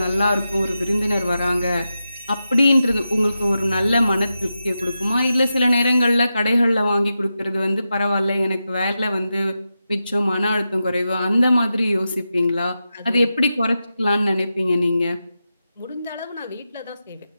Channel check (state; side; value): inverted; both; correlation -0.90